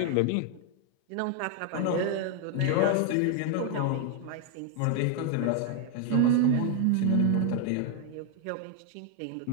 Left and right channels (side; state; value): both; different; correlation 0.00